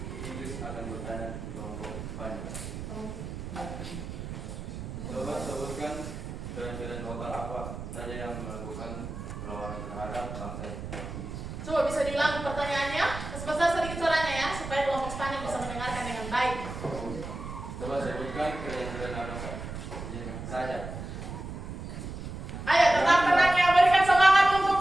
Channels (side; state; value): right; noise; rumble, 8 dB below the sound